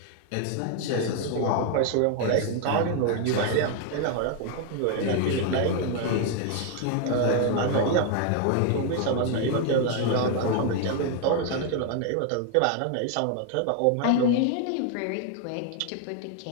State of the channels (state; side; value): different; both; correlation 0.01